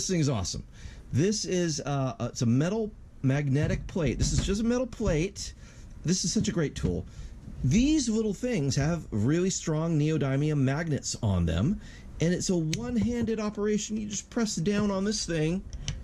thing's awesome. This is it's a metal magnetic plate. This is just a metal plate. This is such a great tool. These little things have really strong neodymium magnets on them, and it's a one-handed operation. You just press down on this thing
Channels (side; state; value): both; identical; correlation 1.00